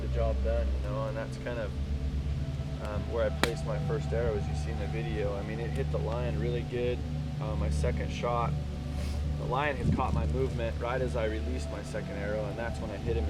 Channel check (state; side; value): identical; both; correlation 1.00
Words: the job done, you know, and that's kind of where I placed my first arrow, as you see in the video. I mean, it hit the lion really good. My second shot, the lion had caught my movement right as I released my second arrow, and that's when I hit him